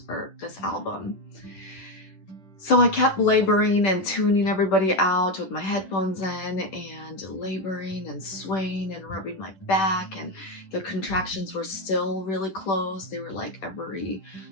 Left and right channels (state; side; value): late; right; 10 ms